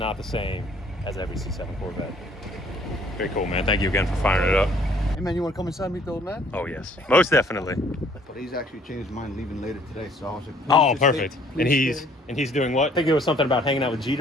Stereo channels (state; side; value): normal; both; correlation 0.59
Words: the same as every C7 Corvette. Very cool, man. Thank you again for firing it up. Hey man, you want to come inside and meet the old man? Oh yes, most definitely. But he's actually changed his mind, leaving later today. So I was like, Oh, please just perfect. stay- And please stay. he's doing what? I think there was something about hanging out with